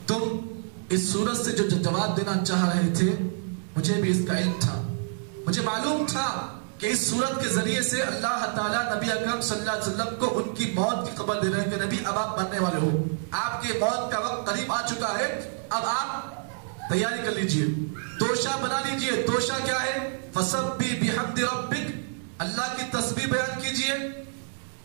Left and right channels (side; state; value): left; silent; 60 dB below the other